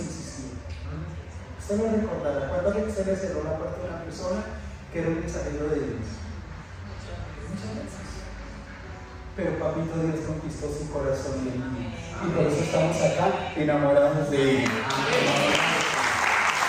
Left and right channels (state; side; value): identical; both; correlation 1.00